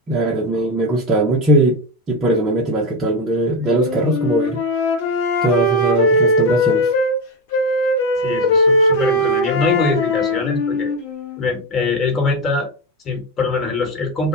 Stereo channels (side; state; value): both; normal; correlation 0.14